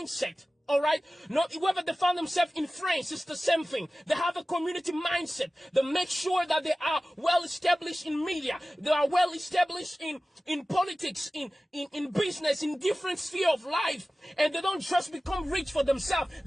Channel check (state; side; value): normal; both; correlation 0.96